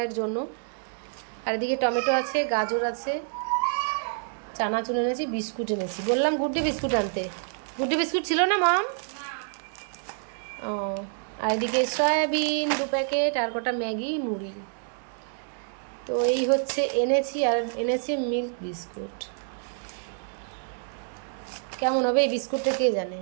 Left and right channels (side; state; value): left; silent; 60 dB below the other